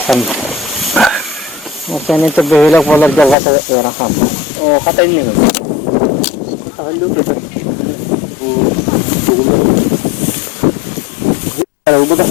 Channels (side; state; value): right; drops out; at 3.4 s